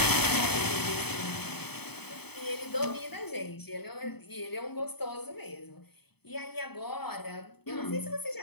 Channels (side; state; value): right; late; 0.97 ms